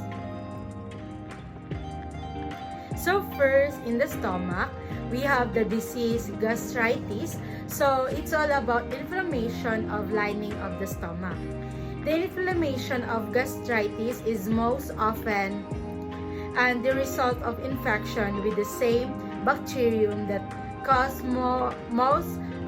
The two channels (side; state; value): both; identical; correlation 1.00